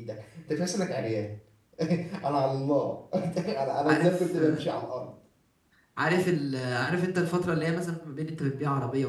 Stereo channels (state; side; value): identical; both; correlation 1.00